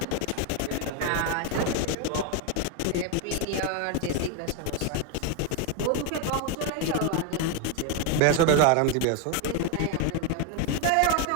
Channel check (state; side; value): different; both; correlation 0.01